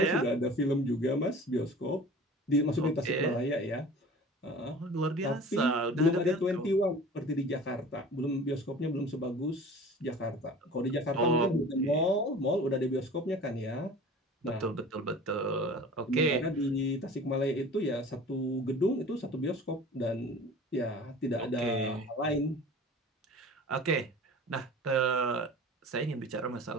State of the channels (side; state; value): both; normal; correlation 0.41